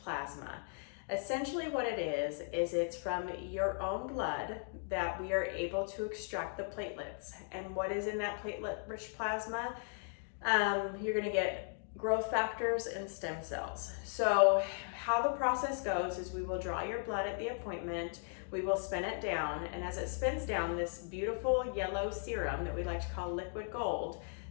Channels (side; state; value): right; silent; 53 dB below the other